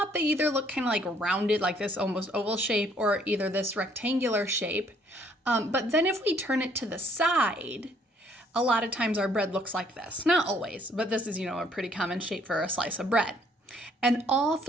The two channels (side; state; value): both; normal; correlation 0.64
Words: they either look kind of like rounded, like this almost oval shape, or either this rectangular shape. But then if we turn it to the side, a lot of times our bread looks like this. Not always, but this is, a pretty common shape for a slice of bread. And all